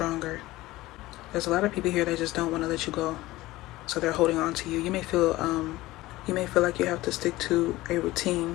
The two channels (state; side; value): quieter; right; 18.1 dB